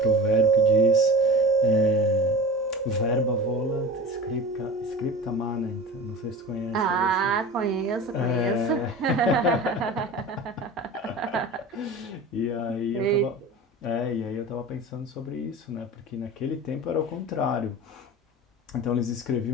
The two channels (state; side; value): normal; both; correlation 0.34